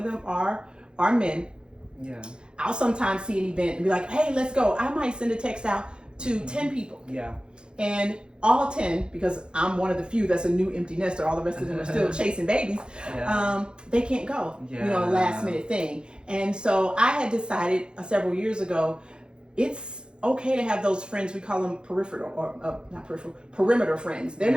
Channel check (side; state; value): left; late; 0.050 ms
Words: them are men, I'll sometimes see an event and be like, hey, let's go. I might send a text out to 10 people. And all 10, because I'm one of the few that's a new empty nester, all the rest of them are still chasing babies, they can't go, you know, last minute thing. And so I had decided several years ago, it's okay to have those friends. We call them peripheral or not peripheral, perimeter friends. They're